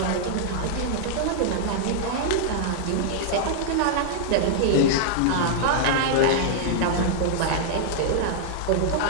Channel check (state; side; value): different; both; correlation -0.01